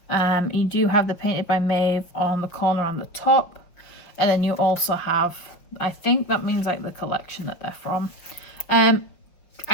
You do have the painted by Maeve on the corner on the top, and then you also have I think that means like the collection that they're from.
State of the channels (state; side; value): late; right; 5.7 ms